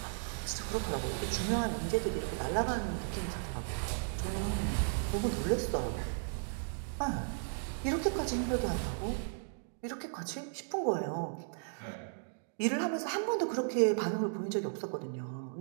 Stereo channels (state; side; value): silent; left; digital silence